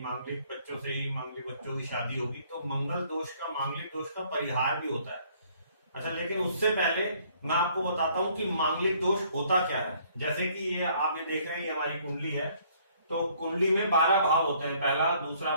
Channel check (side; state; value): both; inverted; correlation -0.62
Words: मांगलिक बच्चों से ही मांगलिक बच्चों की शादी होगी, तो मंगल दोष का मांगलिक दोष का परिहार भी होता है। अच्छा, लेकिन उससे पहले मैं आपको बताता हूं कि मांगलिक दोष होता क्या है। जैसे कि ये आप ये देख रहे हैं, ये हमारी कुंडली है। तो कुंडली में 12 भाव होते हैं, पहला, दूसरा